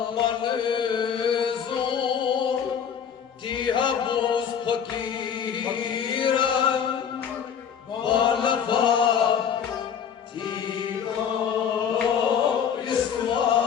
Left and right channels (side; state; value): right; quieter; 7.8 dB